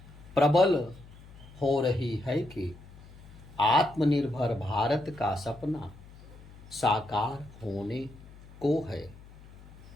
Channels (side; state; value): left; noise; hum, 20 dB below the sound